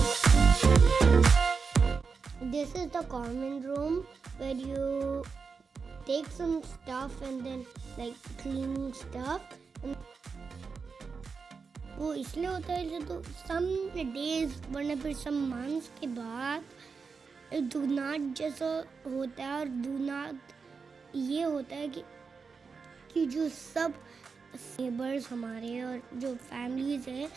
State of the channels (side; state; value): left; quieter; 5.1 dB